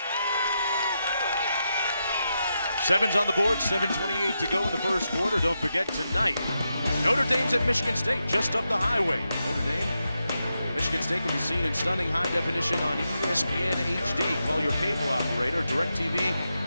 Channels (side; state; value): both; inverted; correlation -0.86